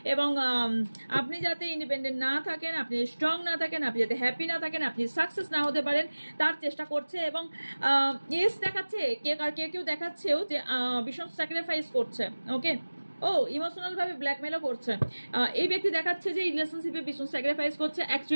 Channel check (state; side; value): inverted; both; correlation -1.00